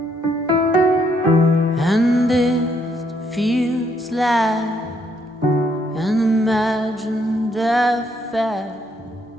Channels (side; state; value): both; normal; correlation 0.71